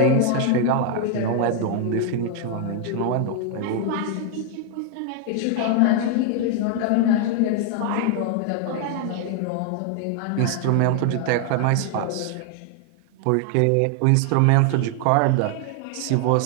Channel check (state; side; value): different; both; correlation 0.00